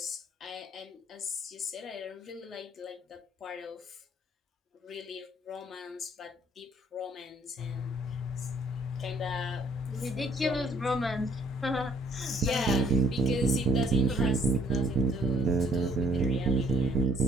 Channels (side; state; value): both; normal; correlation 0.64